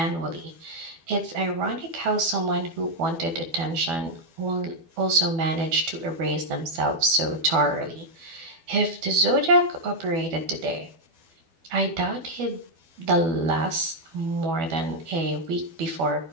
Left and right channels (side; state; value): left; late; 12 ms